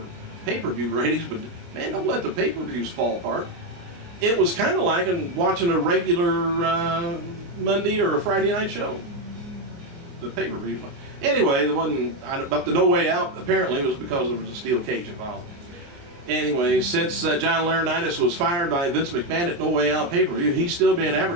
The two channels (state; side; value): late; left; 29 ms